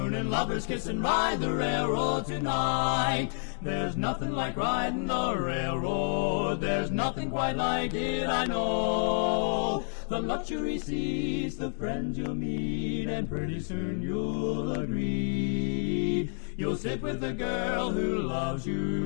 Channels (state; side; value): silent; right; digital silence